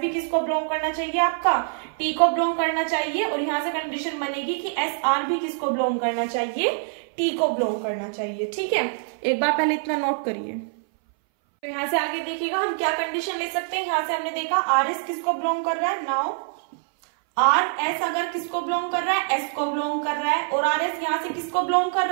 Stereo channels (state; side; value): silent; left; 61 dB below the other